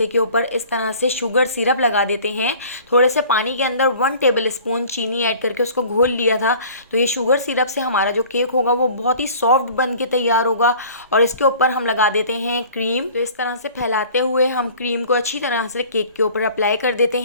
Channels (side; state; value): both; inverted; correlation -0.47